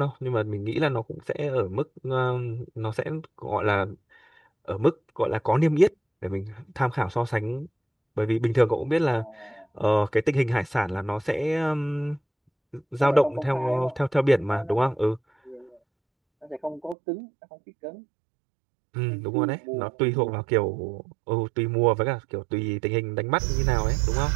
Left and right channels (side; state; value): left; drops out; at 16.9 s